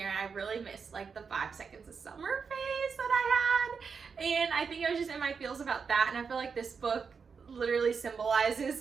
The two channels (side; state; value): left; quieter; 5.7 dB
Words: I really missed like the 5 seconds of summer phase that I had. And I think I was just in my feels about that. And I feel like this book literally symbolizes